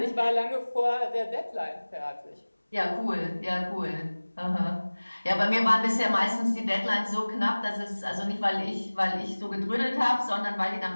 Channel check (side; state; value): both; inverted; correlation -1.00